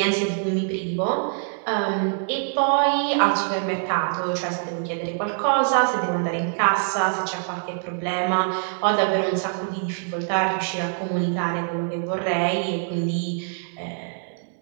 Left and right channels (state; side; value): silent; left; 62 dB below the other